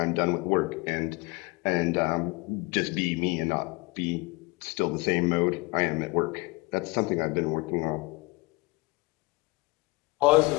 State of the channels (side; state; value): right; quieter; 25.0 dB